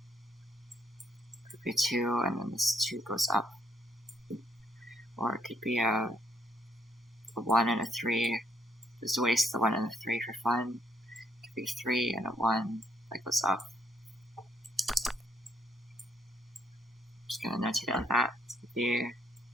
It could be a 2, and then this 2 goes up. Or it could be a 1 and a 3. Just waste the 1 and the 3 for fun. It could be a 3 and a 1 that goes up. Just gonna notate it like that. It could be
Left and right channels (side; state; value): both; normal; correlation 0.70